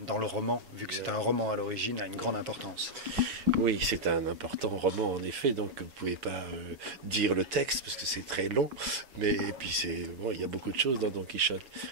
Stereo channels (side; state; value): left; late; 7.3 ms